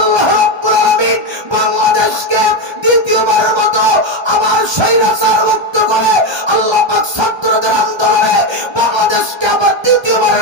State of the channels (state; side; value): late; left; 1.3 ms